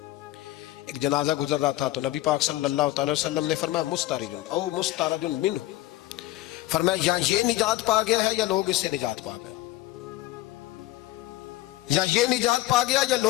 ایک جنازہ گزر رہا تھا تو نبی پاک صلی اللہ تعالی وسلم نے فرمایا مسترج او مسترج منہ، فرمایا یا یہ نجات پا گیا ہے یا لوگ اس سے نجات پا گئے، یا یہ نجات پا گیا یا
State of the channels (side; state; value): right; quieter; 16.4 dB